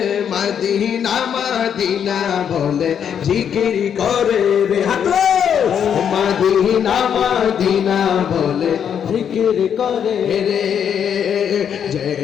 মদিনা মদিনা বলে জিকির করে রে হাতো মদিনা মদিনা বলে জিকির করে রে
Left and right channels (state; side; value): quieter; right; 8.3 dB